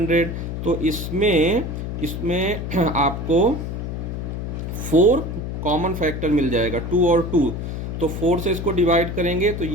तो इसमें आपको 4 कॉमन फैक्टर मिल जाएगा, 2 और 2, तो 4 से इसको डिवाइड करेंगे तो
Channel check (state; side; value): noise; left; hum, 5 dB below the sound